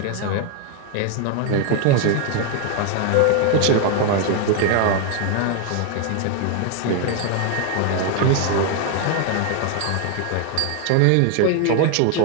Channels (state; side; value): different; both; correlation 0.00